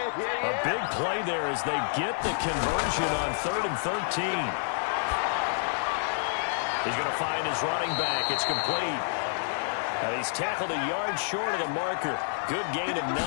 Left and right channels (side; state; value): right; silent; digital silence